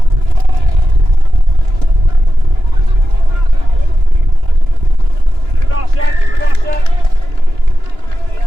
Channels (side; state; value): left; late; 2.9 ms